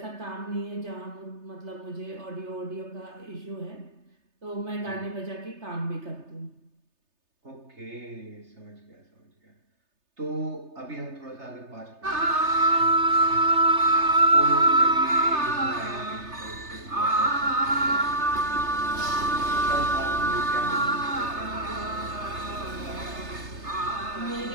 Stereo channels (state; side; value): late; left; 3.3 ms